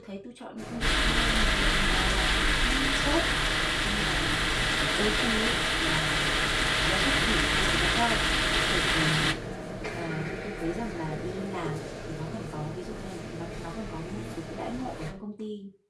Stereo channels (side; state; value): both; identical; correlation 1.00